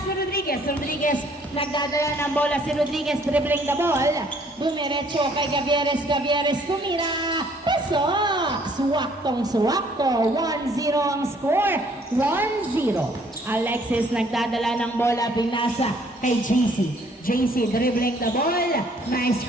to Rodriguez. Rodriguez nagdadala ng bola. Si Rodriguez dribbling the ball. Dumiretso kay Gavieres. Gavieres tumira. Pasok. Suwaktong-suwakto. 1-0 ang score. 1-0. Alexis nagdadala ng bola, pinasa kay JC. JC dribbling the ball. Nice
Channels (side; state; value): both; normal; correlation 0.62